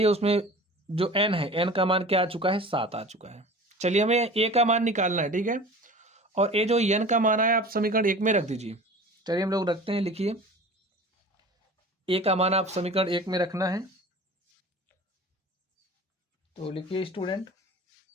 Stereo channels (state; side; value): normal; both; correlation 0.39